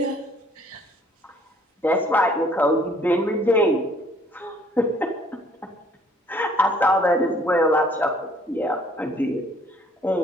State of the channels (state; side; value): normal; both; correlation 0.60